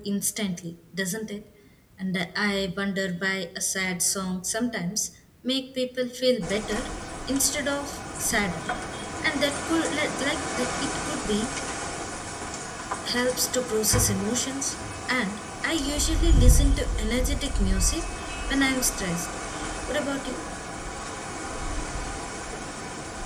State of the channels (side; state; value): both; identical; correlation 1.00